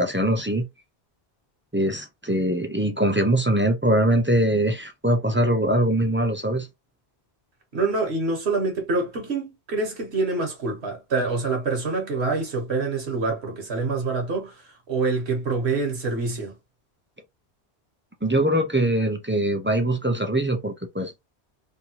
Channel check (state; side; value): normal; both; correlation 0.34